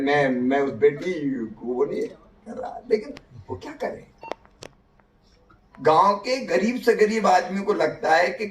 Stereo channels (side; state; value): both; identical; correlation 1.00